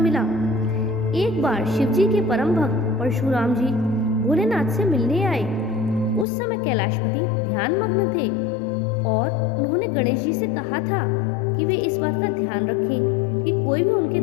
एक बार शिवजी के परम भक्त परशुराम जी भोलेनाथ से मिलने आए। उस समय कैलाशपति ध्यान मग्न थे और उन्होंने गणेश जी से कहा था कि वे इस बात का ध्यान रखें कि कोई भी उनके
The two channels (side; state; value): right; drops out; at 6.2 s